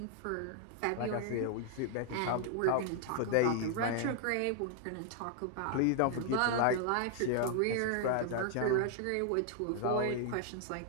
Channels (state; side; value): different; both; correlation 0.00